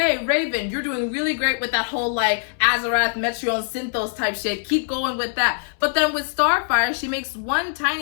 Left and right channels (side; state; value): right; silent; 63 dB below the other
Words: Raven, you're doing really great with that whole like Azarath, Metreon, Synthos type shit. Keep going with that." But then with Starfire, she makes one